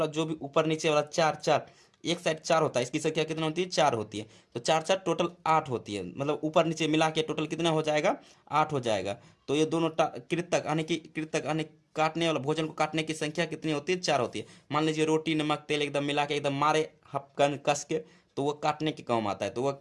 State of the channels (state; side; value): identical; both; correlation 1.00